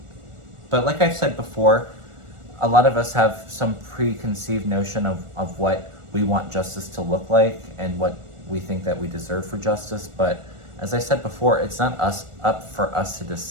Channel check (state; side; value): late; left; 1.4 ms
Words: like I've said before, a lot of us have some preconceived notion of what we want justice to look like and what we think that we deserve for justice. But as I said before, it's not up for us to